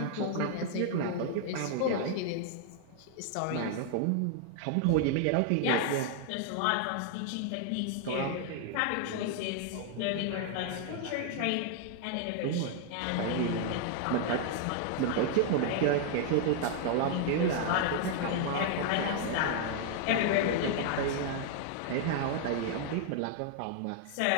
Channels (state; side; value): different; both; correlation 0.00